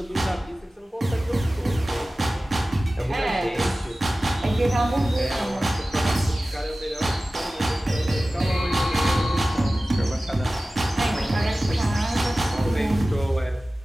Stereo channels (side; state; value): both; normal; correlation 0.96